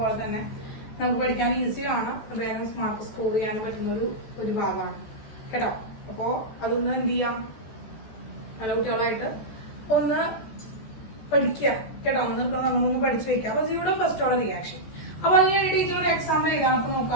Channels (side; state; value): right; late; 14 ms